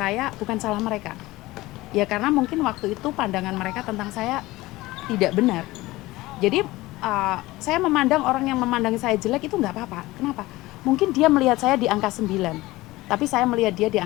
bukan salah mereka. Ya karena mungkin waktu itu pandangan mereka tentang saya tidak benar. Jadi saya memandang orang yang memandang saya jelek itu nggak apa-apa. Kenapa? Mungkin dia melihat saya di angka 9, tapi saya melihat dia di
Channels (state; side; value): quieter; right; 19.2 dB